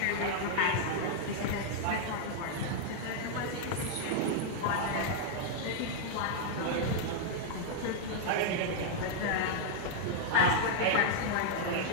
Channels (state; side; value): different; both; correlation -0.01